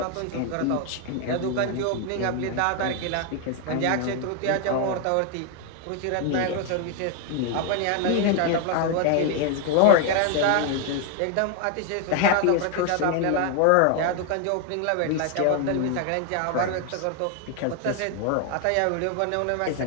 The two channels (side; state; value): both; different; correlation 0.01